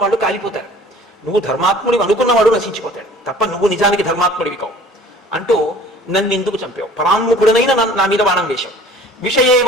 వాళ్ళు కాలిపోతారు. నువ్వు ధర్మాత్ముడివి అనుకున్నవాడు నశించిపోతాడు తప్ప నువ్వు నిజానికి ధర్మాత్ముడివి కావు అంటూ నన్ను ఎందుకు చంపావు? పరాన్ముఖుడనైనా నా మీద బాణం వేశావు.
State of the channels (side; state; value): both; normal; correlation 0.49